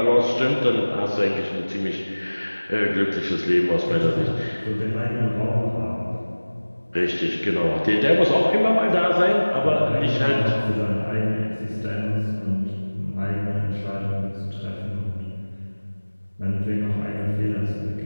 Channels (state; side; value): inverted; both; correlation -1.00